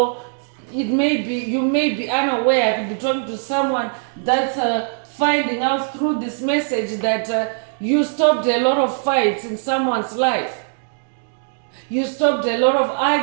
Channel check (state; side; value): silent; left; digital silence